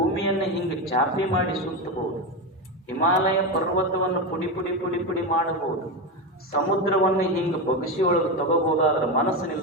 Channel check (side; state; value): both; normal; correlation 0.15